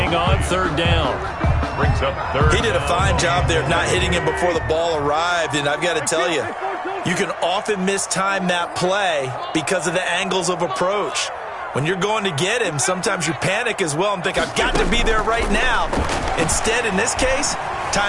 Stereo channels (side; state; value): both; identical; correlation 1.00